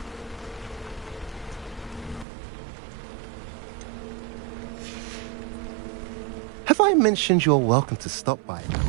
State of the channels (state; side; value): drops out; left; at 2.2 s